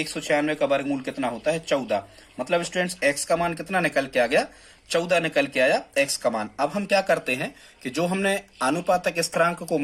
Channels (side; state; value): both; identical; correlation 1.00